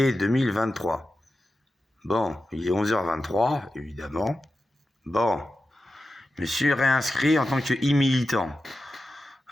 2023. Bon, il est 11h23, évidemment. Bon, je me suis réinscrit en tant que e-militant.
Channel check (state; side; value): normal; both; correlation 0.92